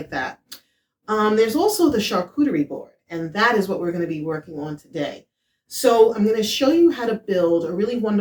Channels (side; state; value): both; identical; correlation 1.00